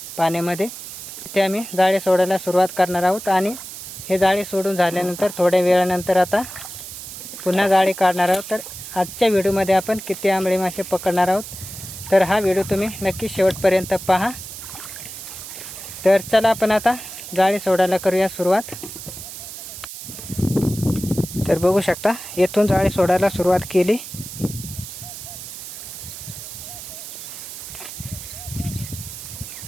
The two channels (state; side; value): noise; right; hiss, 11 dB below the sound